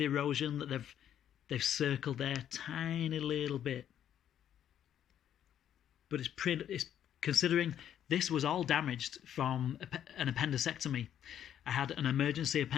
erosion that they've circled there? Tiny little bit. But it's considering this was all damaged from an appendicectomy. I had an emergency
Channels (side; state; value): right; quieter; 10.1 dB